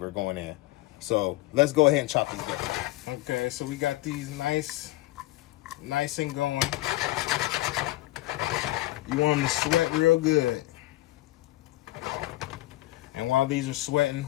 going in. So let's go ahead and chop these veggies. Okay, so we got these nice and going. You want them to sweat real good. And while these are sweating,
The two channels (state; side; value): quieter; right; 18.0 dB